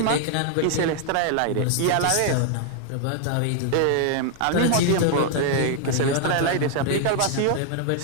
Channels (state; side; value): different; both; correlation 0.00